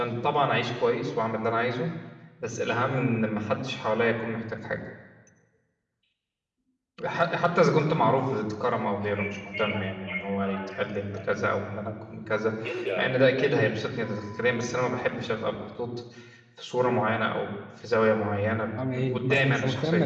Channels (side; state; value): both; identical; correlation 1.00